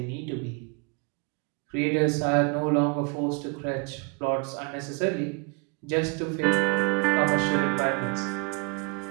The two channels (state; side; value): quieter; left; 31.3 dB